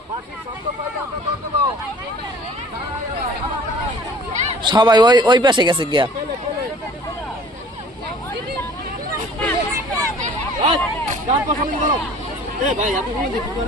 সবাই ওই পাশে গেছে গিয়া।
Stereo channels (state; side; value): normal; both; correlation 0.50